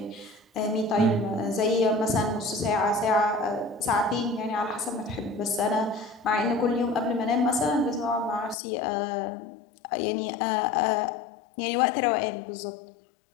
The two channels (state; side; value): drops out; right; at 8.6 s